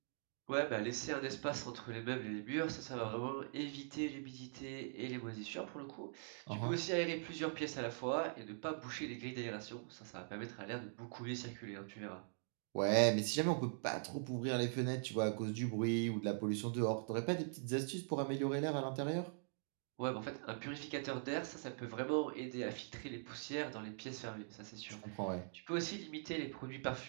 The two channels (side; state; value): left; silent; digital silence